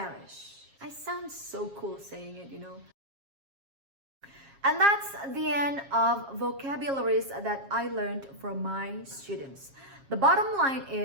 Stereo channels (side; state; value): left; late; 7.3 ms